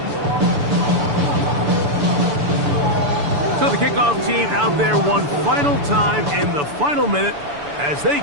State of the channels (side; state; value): left; late; 6.9 ms